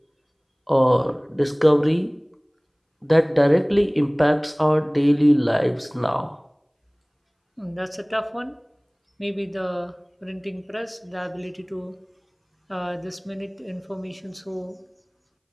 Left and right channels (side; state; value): both; identical; correlation 1.00